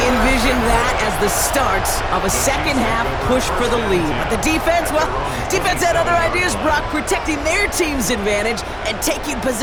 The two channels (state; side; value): identical; both; correlation 1.00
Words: envisioned that as the start of a second-half push for the lead. But the defense, well, defense had other ideas, Brock, protecting their team's advantage and taking